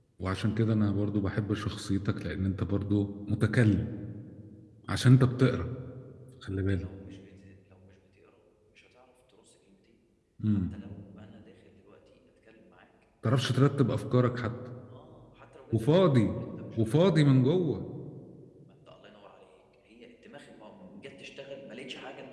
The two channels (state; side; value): identical; both; correlation 1.00